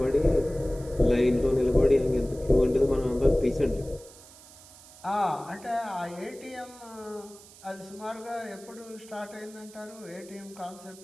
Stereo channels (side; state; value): right; noise; hiss, 21 dB below the sound